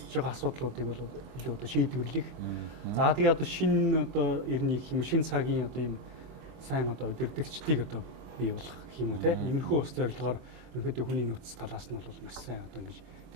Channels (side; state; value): left; late; 24 ms